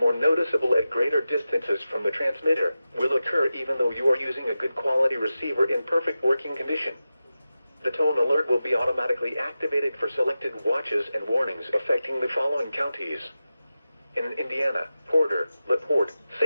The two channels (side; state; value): both; inverted; correlation -0.93